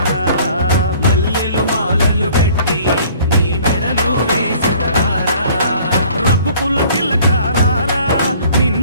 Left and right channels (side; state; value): both; inverted; correlation -0.53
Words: మల్లెలు మాలలు కట్టి నీ మెడలో వేసెదరారా రఘుకుల తిలకారారా